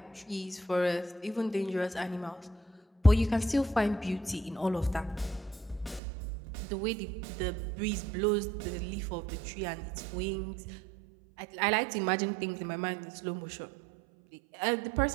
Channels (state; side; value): drops out; left; at 6.0 s